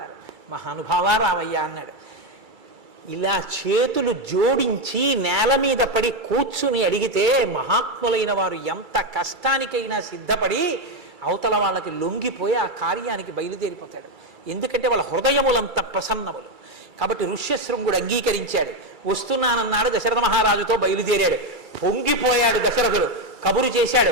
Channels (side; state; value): left; late; 2.3 ms